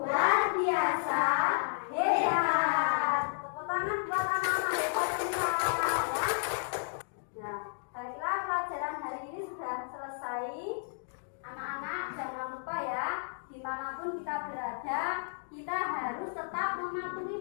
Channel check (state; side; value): silent; right; digital silence